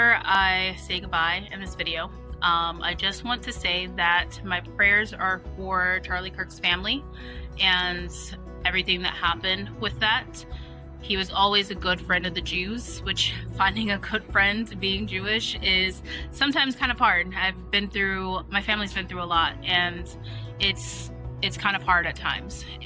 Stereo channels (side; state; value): both; identical; correlation 1.00